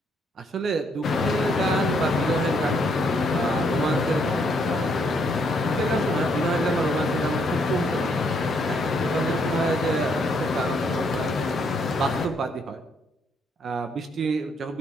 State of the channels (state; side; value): normal; both; correlation 0.72